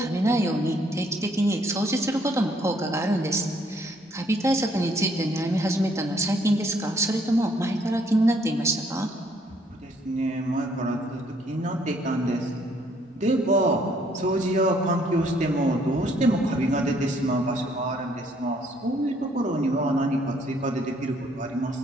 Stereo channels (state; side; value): normal; both; correlation 0.66